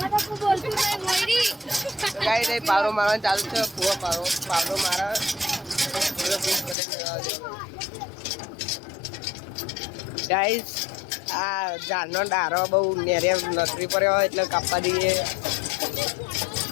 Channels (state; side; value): drops out; right; at 6.8 s